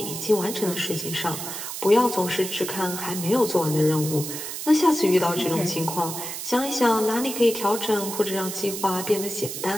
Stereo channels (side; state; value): right; noise; hiss, 7 dB below the sound